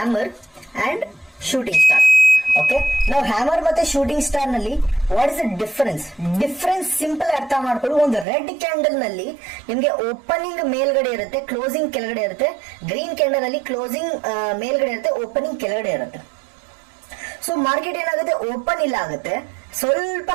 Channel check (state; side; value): drops out; left; at 8.2 s